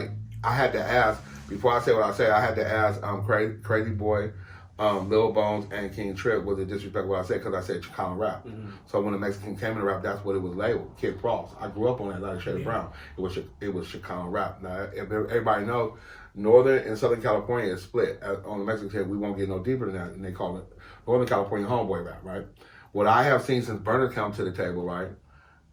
I had to ask before I say what I say. I had to ask Crazy Boy, Lil Bones, and King Trip was it disrespectful what I said because I said Chicano rap. Mm-hmm. So when the Mexican came into rap, that's what it was labeled. Kid Frost. I grew up on that like Shady Brown. It was Chicano rap. Now everybody knows Northern and Southern California is split. On the Mexican side, we won't get no deeper than that, and they call it Northern California homeboy rap, right? What I have seen since Burner come to the table, right?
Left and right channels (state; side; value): identical; both; correlation 1.00